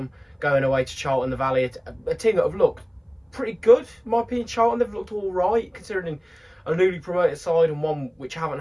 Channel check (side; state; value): both; identical; correlation 1.00